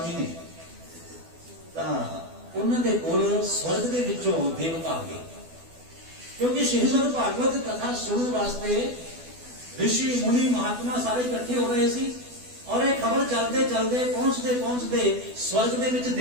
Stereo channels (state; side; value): late; left; 12 ms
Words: ने, उन्होंने कोल स्वर्ग के विचों देवता आ गए, क्योंकि श्रीमद भागवत कथा सुनने वास्ते ऋषि मुनि महात्मा सारे इकट्ठे हो रहे सी। और एक खबर चलते चलते पहुंचते पहुंचते स्वर्ग के विच